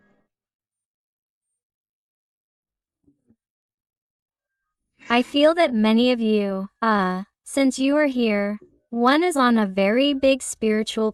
I feel that many of you, since you are here, one is on a very big spiritual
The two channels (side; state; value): both; identical; correlation 1.00